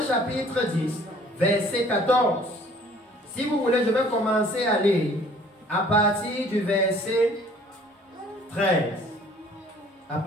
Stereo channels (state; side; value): normal; both; correlation 0.55